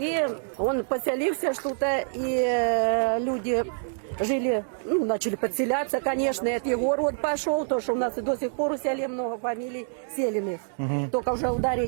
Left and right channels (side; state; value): left; silent; digital silence